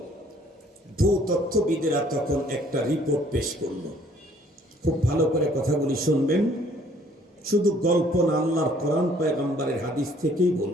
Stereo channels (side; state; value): both; normal; correlation 0.60